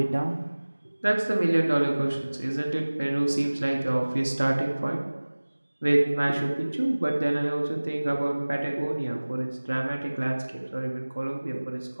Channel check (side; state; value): both; inverted; correlation -1.00